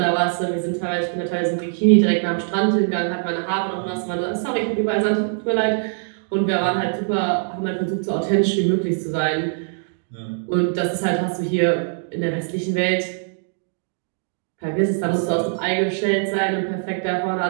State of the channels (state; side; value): silent; left; digital silence